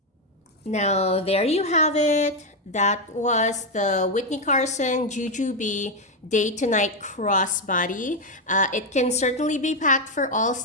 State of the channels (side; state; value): both; normal; correlation 0.05